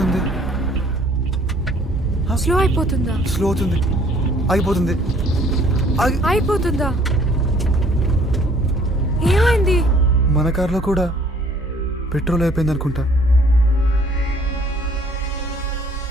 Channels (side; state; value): both; normal; correlation 0.58